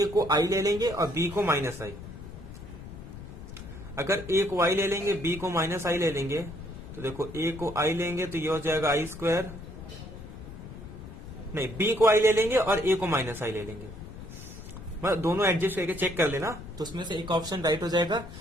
को आई ले लेंगे और बी को माइनस आई। अगर ए को आई ले लेंगे, बी को माइनस आई ले लेंगे, तो देखो ए को आई लेंगे तो ये हो जाएगा आई स्क्वायर, नहीं बी को आई ले लेंगे और ए को माइनस आई ले लेंगे, मतलब दोनों एडजस्ट करके चेक कर लेना, तो उसमें से एक ऑप्शन राइट हो जाएगा।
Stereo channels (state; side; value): noise; left; rumble, 13 dB below the sound